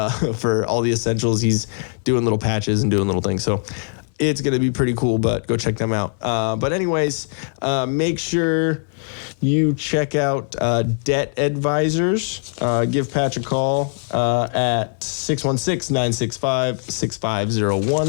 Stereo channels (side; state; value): right; silent; 59 dB below the other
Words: all the essentials. He's doing little patches and doing little things. So it's going to be pretty cool, but go check them out. But anyways, make sure you check out Debt Advisors. Give Patch a call at